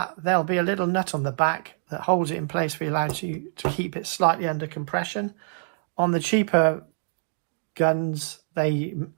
there'll be a little nut on the back that holds it in place for you to keep it slightly under compression. On the cheaper guns, they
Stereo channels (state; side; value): silent; left; digital silence